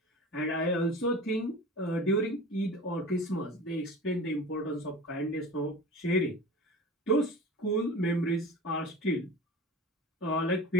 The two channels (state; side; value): normal; both; correlation 0.34